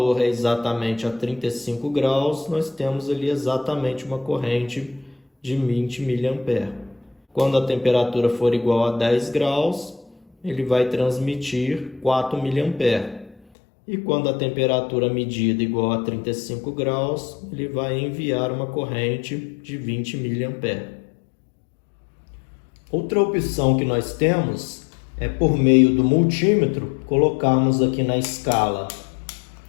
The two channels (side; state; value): right; drops out; at 13.4 s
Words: é exatamente a 35 graus, nós temos ali exatamente uma corrente de 20 mA. Quando a temperatura for igual a 10 graus, ele vai transmitir 4 mA. E quando a temperatura medida igual a 35 graus, ele vai enviar uma corrente de 20 mA. Outra opção que nós temos é por meio do multímetro, colocarmos aqui na escala